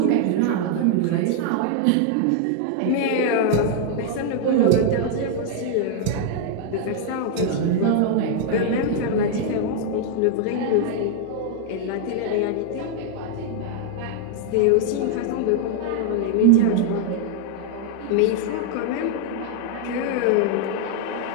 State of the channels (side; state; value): both; different; correlation 0.00